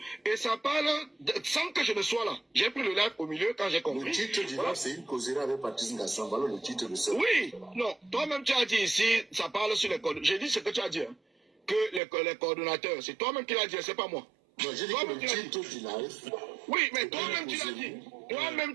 Et ça parle sans que je ne sois là. J'ai pris le live au milieu quand j'ai compris. Le titre du live, c'est une causerie avec Patrice Ngassan. Voilà le titre de ça. Oui, non, toi-même tu as dit ici, ça parle sur les codes. J'ai dit ce que tu as dit. Hein. que les coordonnateurs. C'est toi-même qui l'as dit, c'est pas moi. Non, j'ai dit que le titre du live. Oui, mais toi-même tu l'as dit. Toi-même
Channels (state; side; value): drops out; left; at 12.0 s